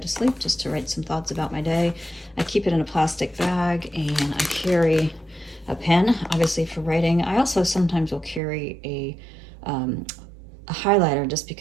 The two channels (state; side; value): drops out; left; at 8.4 s